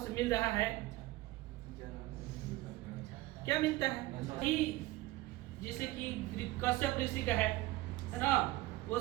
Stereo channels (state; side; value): quieter; left; 18.4 dB